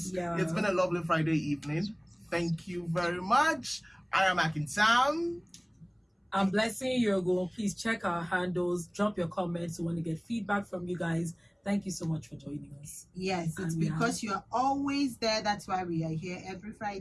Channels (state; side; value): identical; both; correlation 1.00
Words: Yeah. It's been a lovely Friday evening. Thank you very much. I am Akin Sam. I'm Blessing Yogo. Please check our handles, drop your comments. We want to get feedback from you guys. Thank you so much for joining us. Yes, it's And because you're always there. That's why we are here every